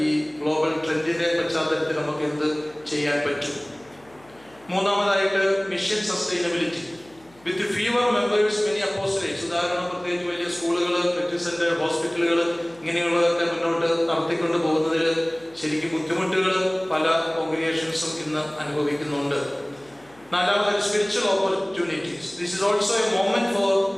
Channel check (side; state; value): left; noise; hum, 28 dB below the sound